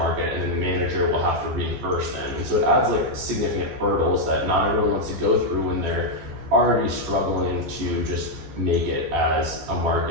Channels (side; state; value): left; late; 15 ms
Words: and then the manager will have to reimburse them. And so it adds like significant hurdles that not everyone wants to go through when they're already struggling to just make it as a